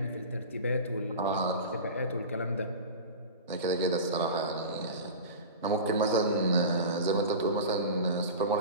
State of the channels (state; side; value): inverted; both; correlation -0.31